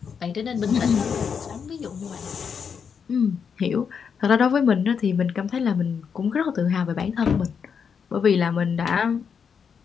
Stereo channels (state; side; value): quieter; right; 6.6 dB